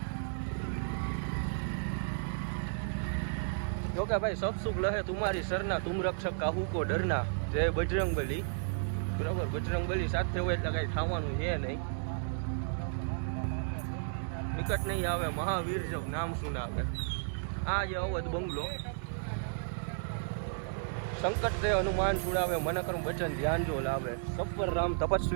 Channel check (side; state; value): left; silent; digital silence